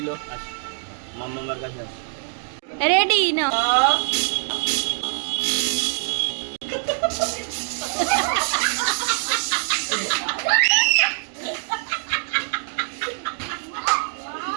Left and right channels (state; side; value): silent; left; 63 dB below the other